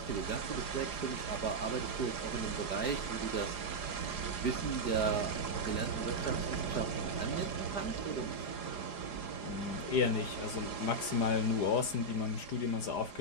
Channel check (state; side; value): late; right; 4.9 ms